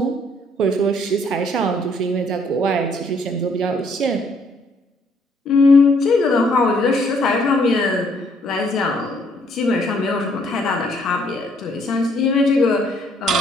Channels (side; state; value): both; normal; correlation 0.66